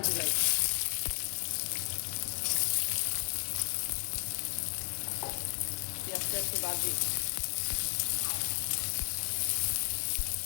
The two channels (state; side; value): silent; right; digital silence